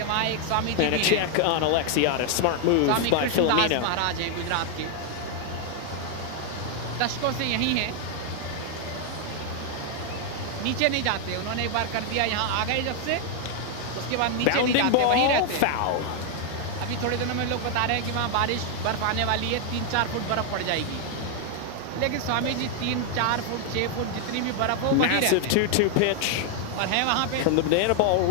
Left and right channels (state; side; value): different; both; correlation 0.00